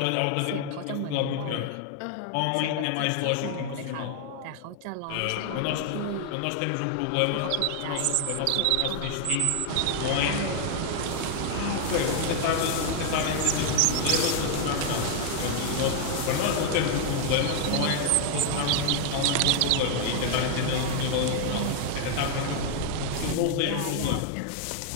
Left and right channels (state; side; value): different; both; correlation 0.00